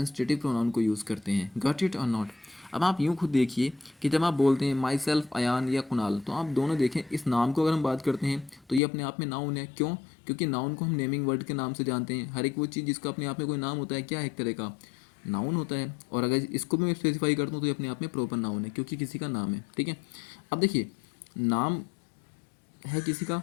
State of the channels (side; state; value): right; drops out; at 8.8 s